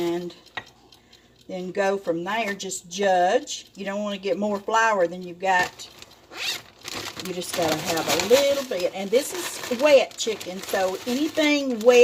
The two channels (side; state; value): both; identical; correlation 1.00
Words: then go from there. Just judge. You don't want to get more flour than you've got. You just got to have a little bit. And this is wet chicken, so anything